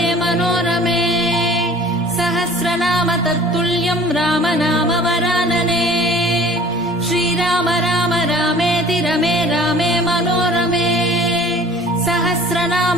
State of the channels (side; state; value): both; normal; correlation 0.48